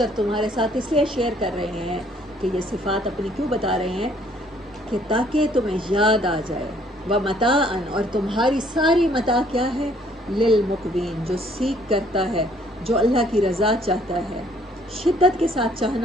تمہارے ساتھ اس لیے شیئر کر رہے ہیں کہ یہ صفات اپنی کیوں بتا رہے ہیں کہ تاکہ تمہیں یاد آ جائے، ومتاعا، اور تمہاری ساری متاع کیا ہے، للمقوین، جو سیکھ کرتا ہے، جو اللہ کی رضا چاہتا ہے، شدت کے ساتھ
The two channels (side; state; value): both; normal; correlation 0.62